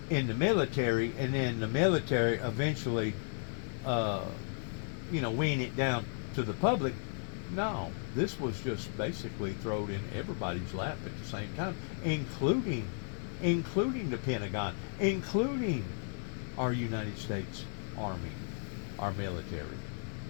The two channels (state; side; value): silent; right; 55 dB below the other